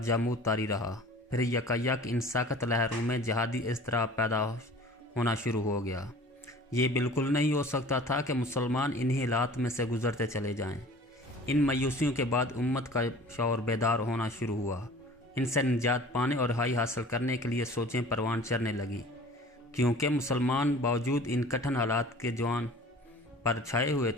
جمود طاری رہا، پھر یکایک ان سخت لہروں میں جہادی اضطراب پیدا ہونا شروع ہو گیا۔ یہ بالکل نہیں ہو سکتا تھا کہ مسلمان انہی حالات میں سے گزرتے چلے جائیں۔ ان مایوسیوں کے بعد امت کا شعور بیدار ہونا شروع ہوا۔ ان سے نجات پانے اور رہائی حاصل کرنے کے لیے سوچیں پروان چڑھنے لگی، کیونکہ مسلمان باوجود ان کٹھن حالات کے جوان پر چھائے ہوئے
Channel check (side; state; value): both; normal; correlation 0.45